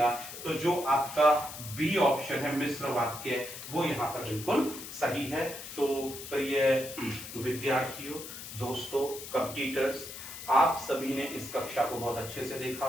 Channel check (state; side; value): noise; left; hiss, 11 dB below the sound